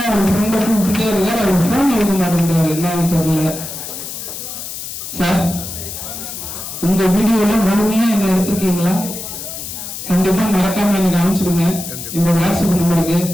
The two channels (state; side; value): noise; left; hiss, 8 dB below the sound